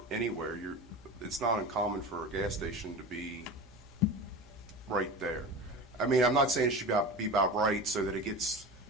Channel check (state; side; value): normal; both; correlation 0.30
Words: anywhere, it's not uncommon for a gas station to be right there. I mean, I'm not saying it should be about right so that it gets